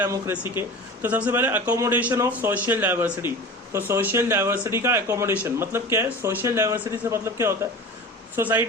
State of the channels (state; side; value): normal; both; correlation 0.35